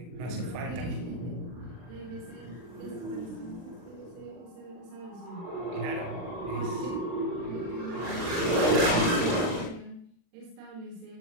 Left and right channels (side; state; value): left; late; 40 ms